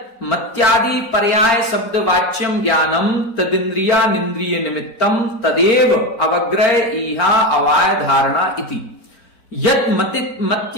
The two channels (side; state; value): right; late; 4.4 ms